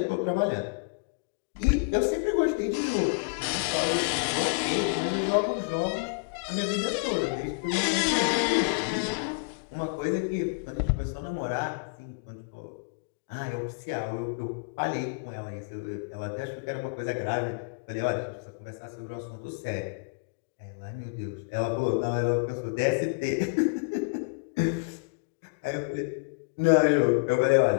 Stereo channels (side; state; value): right; quieter; 36.2 dB